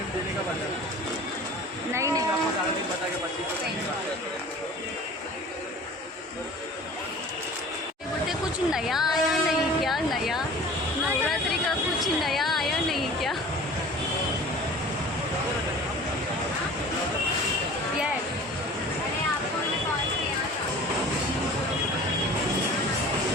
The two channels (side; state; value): both; normal; correlation 0.43